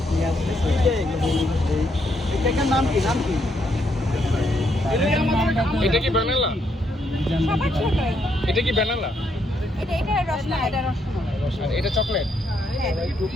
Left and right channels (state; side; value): normal; both; correlation 0.75